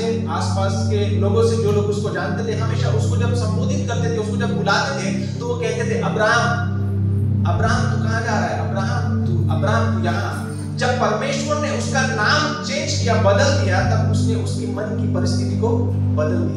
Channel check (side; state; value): both; identical; correlation 1.00